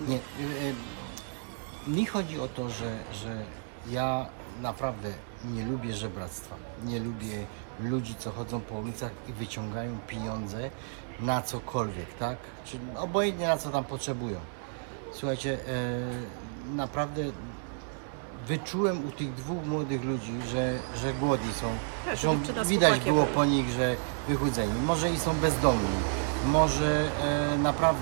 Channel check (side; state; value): left; silent; 57 dB below the other